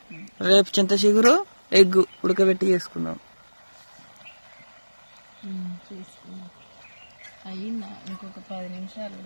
రేపు చింత చిగురు ఎగ్గు ఉడకబెట్టి చేసుకుందాం. అయ్యిందా? ఇంకొక 10 నిమిషాలు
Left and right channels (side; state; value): both; inverted; correlation -1.00